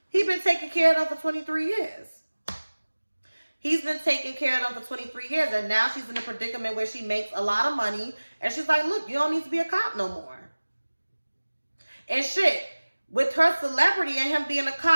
He's been taking care of them for 23 years. He's been taking care of them for 23 years, and now she's in a predicament where she makes a lot of money, and she's like, look, you don't need to be a cop no more. And shit, with her celebrity and him being a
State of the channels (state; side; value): inverted; both; correlation -1.00